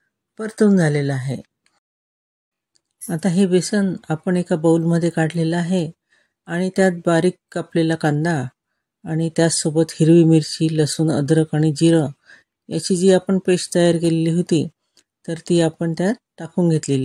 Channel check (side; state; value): both; identical; correlation 1.00